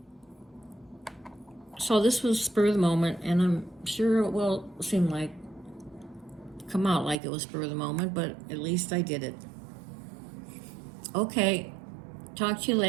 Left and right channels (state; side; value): drops out; left; at 7.2 s